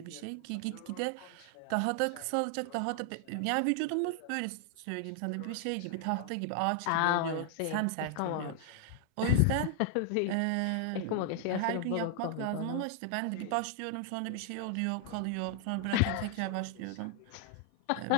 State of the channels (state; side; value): different; both; correlation 0.00